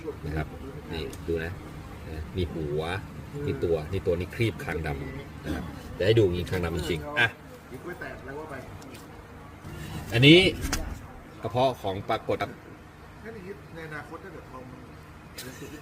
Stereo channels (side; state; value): both; identical; correlation 1.00